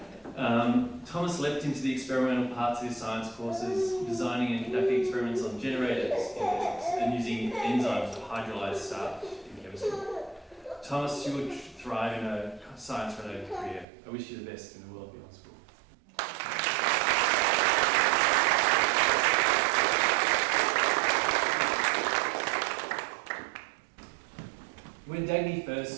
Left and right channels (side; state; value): left; drops out; at 13.9 s